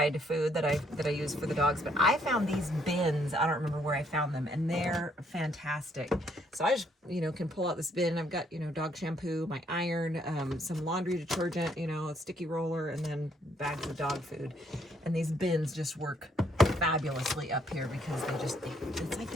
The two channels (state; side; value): normal; both; correlation 0.68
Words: food that I use for the dogs. But I found these bins. I don't remember where I found them, and they're fantastic. So I just, can pull out this bin. I've got, dog shampoo, my iron, some laundry detergent, a sticky roller, and then bags of dog food. And these bins just work fabulously up here because it's like